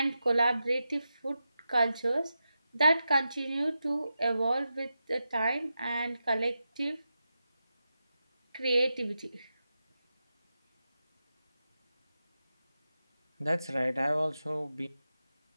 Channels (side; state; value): both; inverted; correlation -0.90